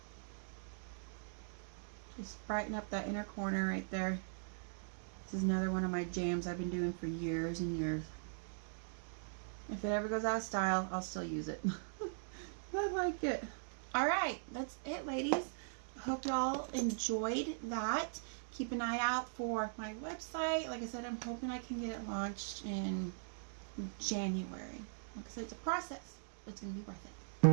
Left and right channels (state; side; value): silent; left; digital silence